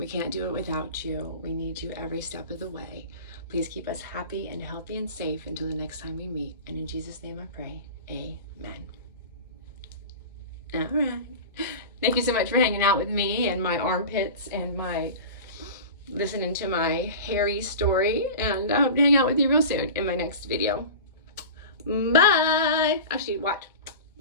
can't do it without you. We need you every step of the way. Please keep us happy and healthy and safe until the next time we meet. And in Jesus' name I pray, amen. All right. Thank you so much for hanging out with me and my armpits and my listening to my hairy story. And I hope to hang out with you real soon in my next video. Bye. Actually, watch.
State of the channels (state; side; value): inverted; both; correlation -0.33